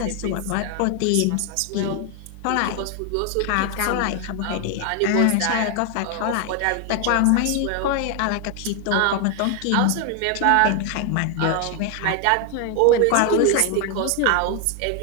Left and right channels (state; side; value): different; both; correlation 0.00